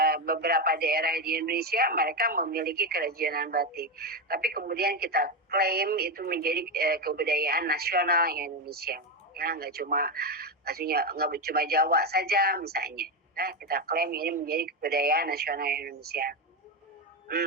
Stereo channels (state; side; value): normal; both; correlation 0.11